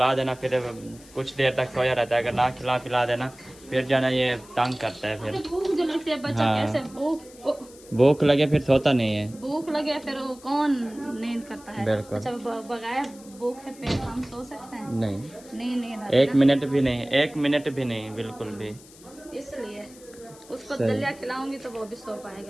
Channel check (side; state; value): left; noise; hiss, 22 dB below the sound